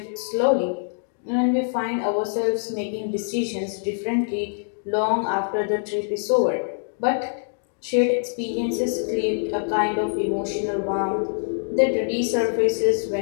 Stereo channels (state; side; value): silent; right; digital silence